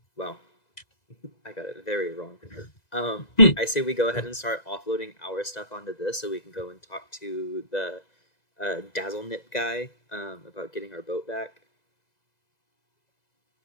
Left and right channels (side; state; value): right; late; 2.0 ms